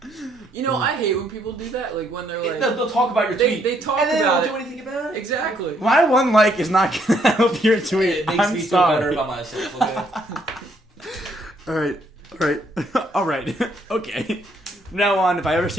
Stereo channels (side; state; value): both; normal; correlation 0.70